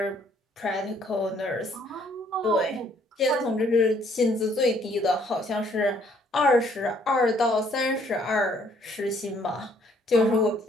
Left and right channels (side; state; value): both; normal; correlation 0.64